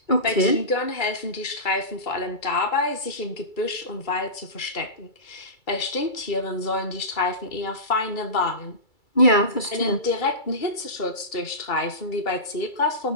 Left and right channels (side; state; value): right; late; 2.3 ms